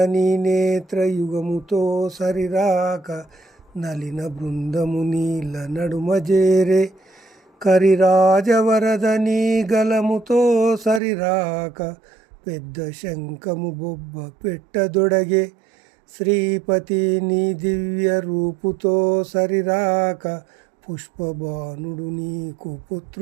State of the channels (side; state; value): left; drops out; at 11.0 s